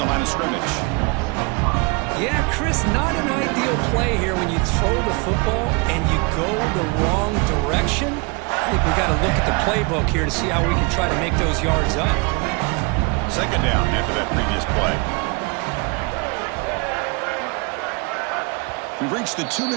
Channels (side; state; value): left; quieter; 29.4 dB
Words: line of scrimmage. Yeah, Chris, not an ideal play here when you throw the football and you go the wrong direction. I think we got to look at the playbook here to see how we can try to make those yards up. Second down after that previous play. We've reached the